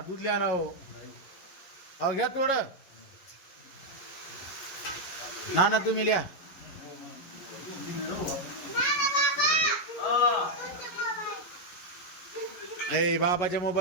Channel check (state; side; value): late; right; 11 ms